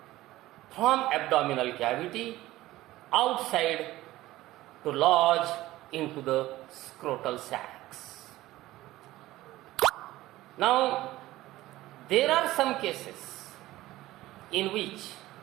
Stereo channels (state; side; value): quieter; left; 16.7 dB